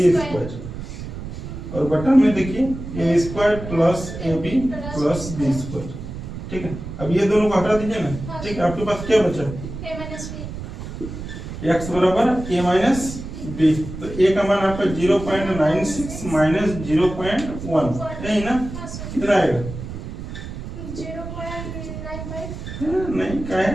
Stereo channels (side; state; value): right; noise; rumble, 9 dB below the sound